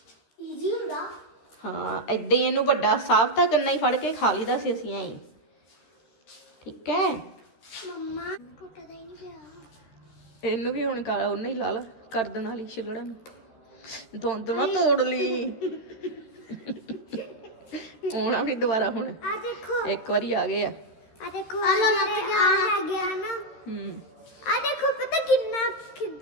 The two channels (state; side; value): late; right; 13 ms